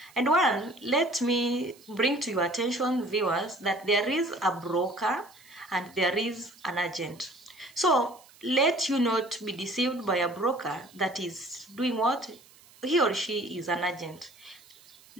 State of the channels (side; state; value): right; noise; hiss, 25 dB below the sound